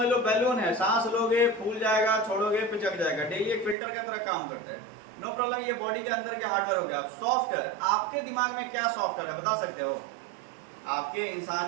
लो बैलून है, सांस लोगे फूल जाएगा, छोड़ोगे पिचक जाएगा, डेली एक फिल्टर की तरह काम करता है। नो प्रॉब्लम, ये बॉडी के अंदर के हार्डवेयर हो गया। सॉफ्टवेयर, आपके दिमाग में क्या सॉफ्टवेयर है बता सकते हो? आपके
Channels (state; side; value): drops out; left; at 3.8 s